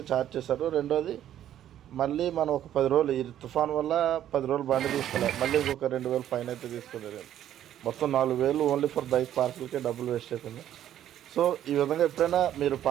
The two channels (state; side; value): quieter; left; 11.3 dB